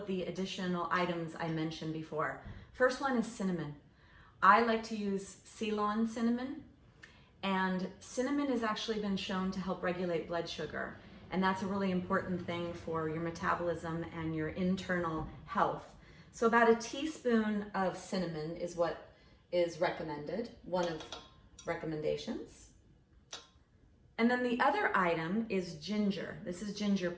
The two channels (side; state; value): both; identical; correlation 1.00